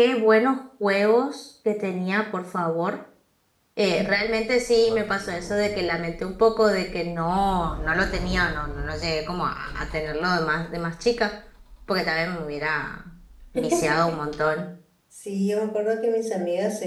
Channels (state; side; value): identical; both; correlation 1.00